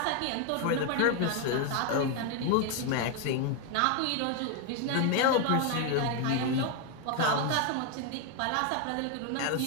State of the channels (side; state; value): both; different; correlation 0.01